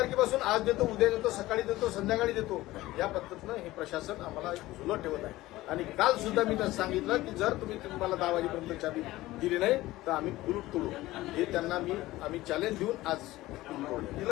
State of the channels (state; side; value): quieter; right; 17.5 dB